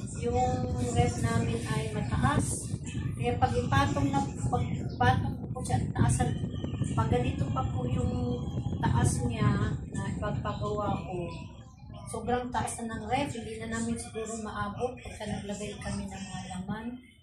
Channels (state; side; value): identical; both; correlation 1.00